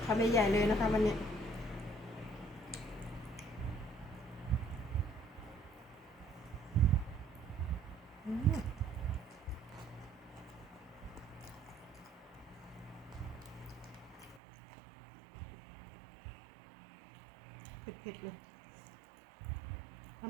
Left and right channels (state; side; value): drops out; left; at 14.4 s